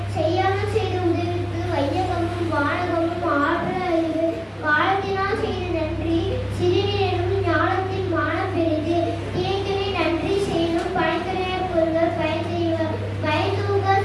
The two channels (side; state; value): both; identical; correlation 1.00